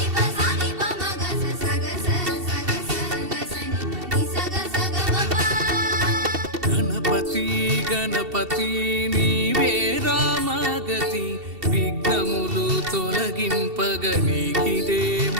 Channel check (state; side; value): late; left; 2.7 ms